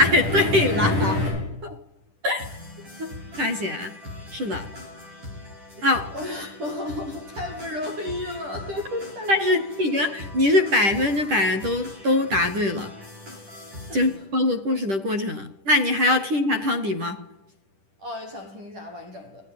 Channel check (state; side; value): late; left; 10 ms